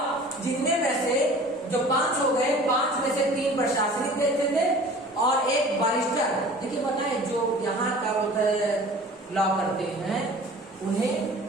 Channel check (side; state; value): both; normal; correlation 0.44